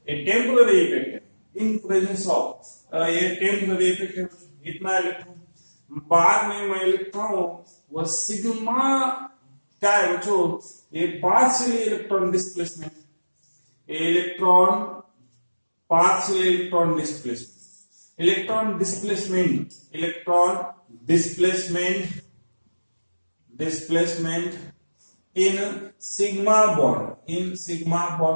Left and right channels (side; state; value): both; inverted; correlation -1.00